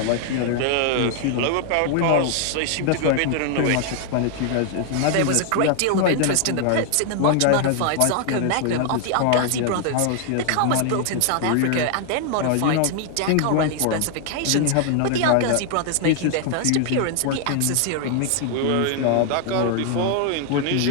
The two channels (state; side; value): different; both; correlation 0.00